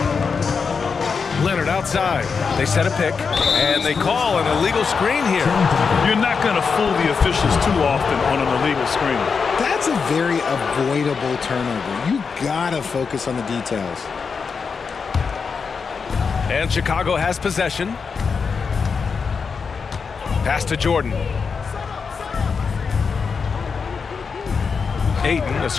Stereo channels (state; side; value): quieter; right; 5.5 dB